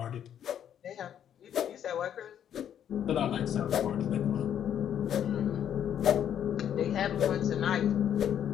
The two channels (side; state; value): right; quieter; 9.6 dB